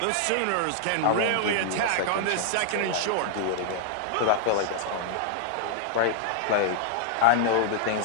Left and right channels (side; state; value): both; different; correlation -0.01